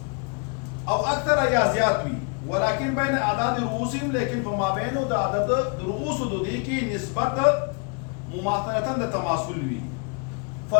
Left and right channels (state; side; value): quieter; right; 36.3 dB